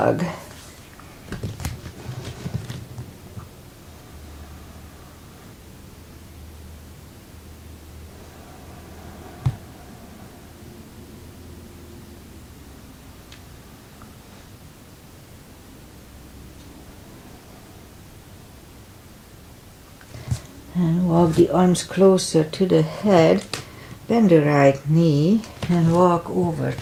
And walk the arms closer to the head, bend the right knee and walk over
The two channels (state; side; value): identical; both; correlation 1.00